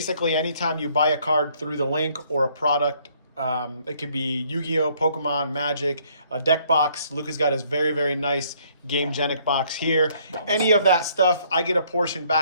anytime you buy a card through the link or a product, it could be Yu-Gi-Oh, Pokemon, Magic, a deck box. Luca's got his very, very nice Gamegenic box here. Any of that stuff, I get a portion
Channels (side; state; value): both; inverted; correlation -0.64